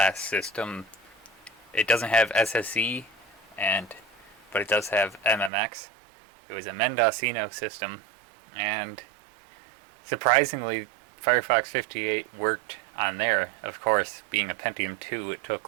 system. It doesn't have SSE, but it does have MMX. It was a Mendocino system, and surprisingly, Firefox 58 worked on there. Of course, being a Pentium 2, it took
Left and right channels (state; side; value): drops out; left; at 5.5 s